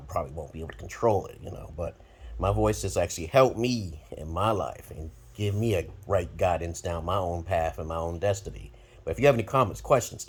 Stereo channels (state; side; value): identical; both; correlation 1.00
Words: probably won't be able to control it, you know. But my voice has actually helped me in my life and give me a right guidance down my own path and my own destiny. But if you have any comments, questions,